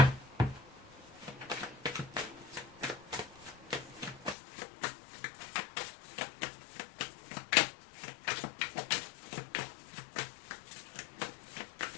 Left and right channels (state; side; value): drops out; right; at 4.4 s